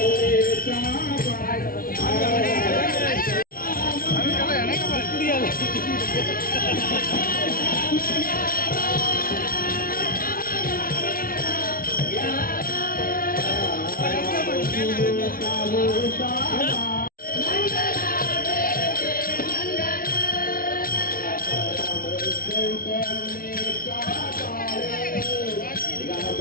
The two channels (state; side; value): late; right; 0.42 ms